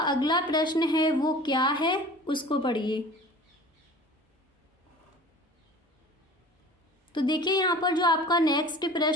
अगला प्रश्न है वो क्या है, उसको पढ़िए। तो देखिए यहाँ पर जो आपका नेक्स्ट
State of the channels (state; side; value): normal; both; correlation 0.42